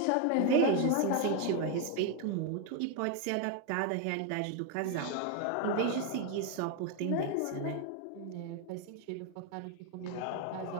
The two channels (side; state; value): both; different; correlation 0.01